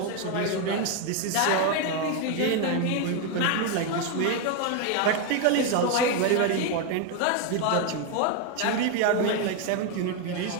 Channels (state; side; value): different; both; correlation 0.01